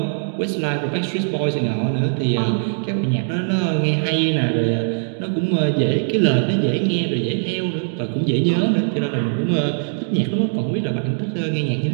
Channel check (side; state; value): left; silent; digital silence